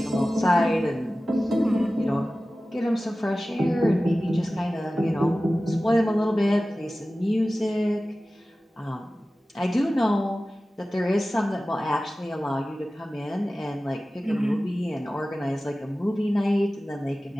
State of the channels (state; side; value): normal; both; correlation 0.96